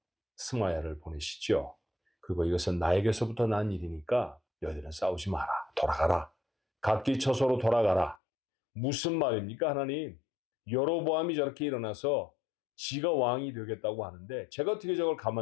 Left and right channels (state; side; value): drops out; right; at 8.2 s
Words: 스마야를 보내시죠. 그리고 이것은 나에게서부터 난 일이니까 너희들은 싸우지 마라. 돌아가라. 각기 처소로 돌아가라. 무슨 말입니까, 하나님? 여로보암이 저렇게 일어나서 지가 왕이 되겠다고 하는데 제가 어떻게 저걸